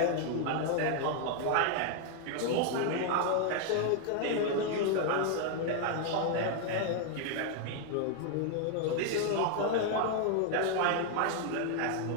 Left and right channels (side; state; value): both; different; correlation 0.00